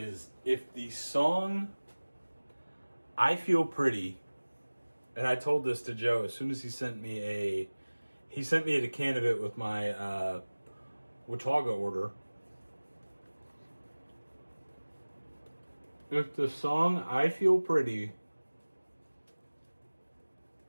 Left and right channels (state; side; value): inverted; both; correlation -1.00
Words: if the song I Feel Pretty, and I told this to Joe as soon as he sent me a can of it with my Watauga order. If the song I Feel Pretty